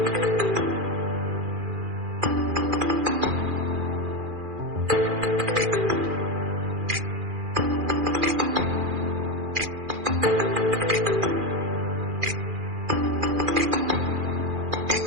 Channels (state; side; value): late; left; 2.4 ms